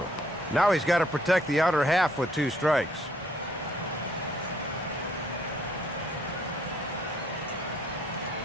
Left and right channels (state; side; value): normal; both; correlation 0.66